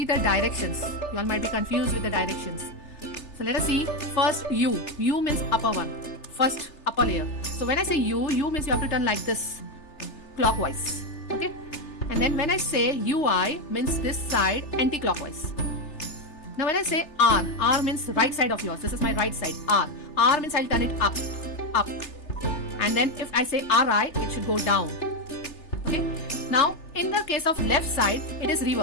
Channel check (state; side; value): late; right; 3.3 ms